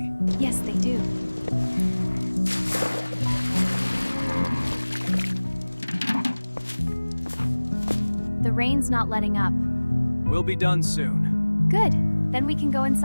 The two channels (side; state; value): both; inverted; correlation -1.00